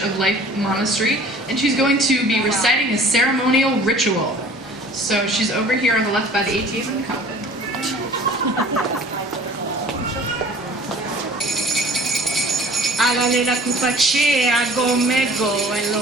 of Life Monastery, and she's going to be reciting a ceremonial ritual. So she's over here on the left by the ATM and the coffin. Agale la kupache, ago mego, en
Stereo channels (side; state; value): both; normal; correlation 0.48